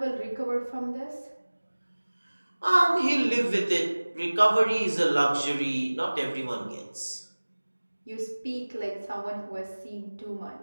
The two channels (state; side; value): inverted; both; correlation -1.00